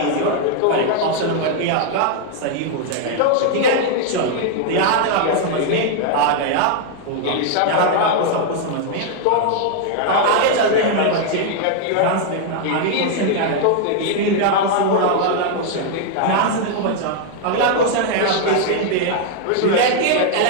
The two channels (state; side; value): different; both; correlation 0.00